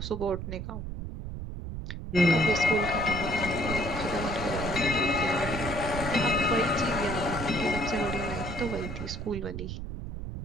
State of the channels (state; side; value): noise; right; rumble, 7 dB below the sound